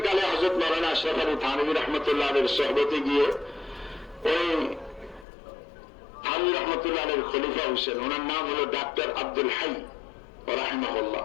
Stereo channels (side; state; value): right; drops out; at 5.2 s